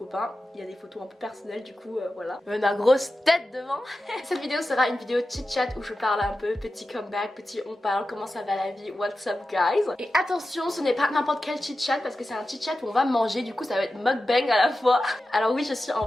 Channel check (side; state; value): both; normal; correlation 0.93